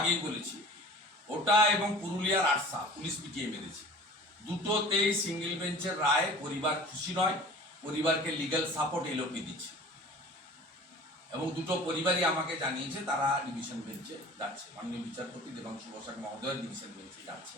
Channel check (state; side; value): normal; both; correlation 0.43